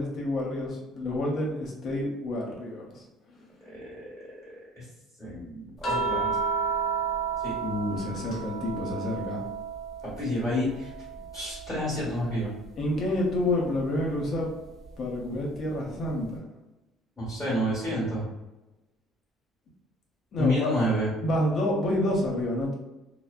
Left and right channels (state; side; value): normal; both; correlation 0.51